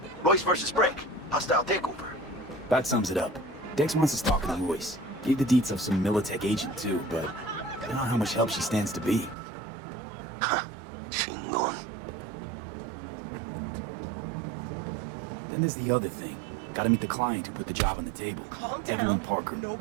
Royce versus Break. Hostile takeover. That sums it up. Dex wants us talking to Royce. Gave the deets of some Militech agent too, but I don't know how much help she stands to be. Chingon. Then there's the other thing. Gotta meet the client who put the job on the table. Calm down. Evelyn Parker.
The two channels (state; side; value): drops out; left; at 9.3 s